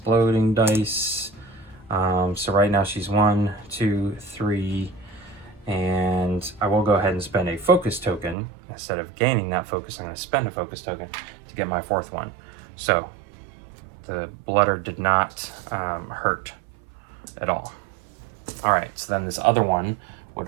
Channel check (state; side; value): drops out; left; at 8.3 s